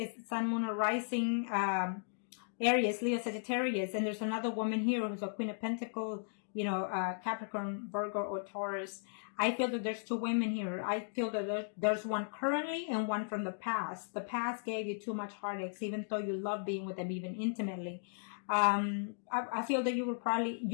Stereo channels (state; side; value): silent; right; digital silence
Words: Sun, Moon, or Rising, Aries, Leo, Sagittarius. And there's another woman here who's a Queen of Pentacles, you know, Capricorn, Virgo, or Taurus. I feel that there's two women here. I feel that there's one currently and one from the past. The past gave you too much heartaches, even though you love being with them, even intimately. I feel that